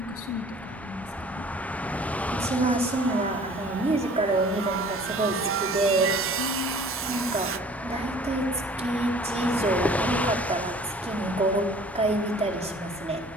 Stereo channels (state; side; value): normal; both; correlation 0.50